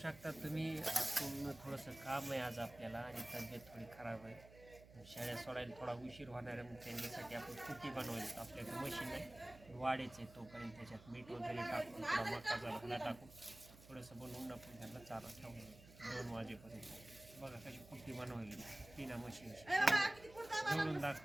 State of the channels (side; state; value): right; noise; hum, 19 dB below the sound